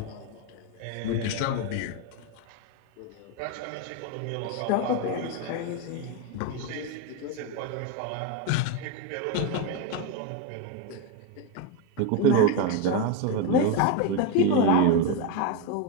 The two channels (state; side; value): different; both; correlation 0.03